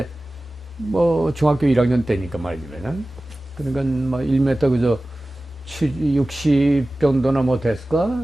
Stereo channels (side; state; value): both; normal; correlation 0.97